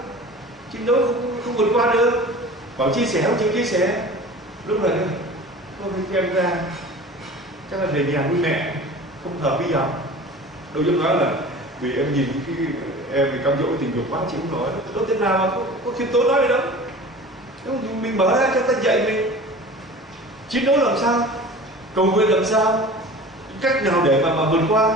chứ đâu không vượt qua được. Bảo chia sẻ không chịu chia sẻ, lúc này không thấy em ra chắc là về nhà với mẹ không hợp bây giờ. Đâu dám nói là vì em nhìn cái em thì cam dỗ tình dục quá chịu không nổi. Đâu thế nào mà có khiêm tốn nói gì đâu. Mình mở ra cho ta dạy mình chiến đấu làm sao, cầu nguyện làm sao, cách nào để mà vượt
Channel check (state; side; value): normal; both; correlation 0.39